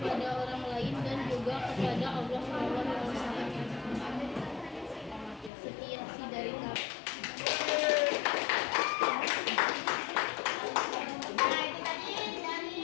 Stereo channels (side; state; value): right; drops out; at 5.5 s